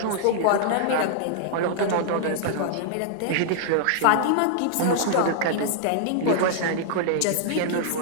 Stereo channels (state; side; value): different; both; correlation -0.01